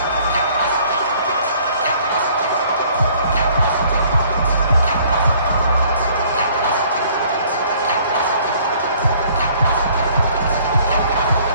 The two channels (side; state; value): both; inverted; correlation -0.58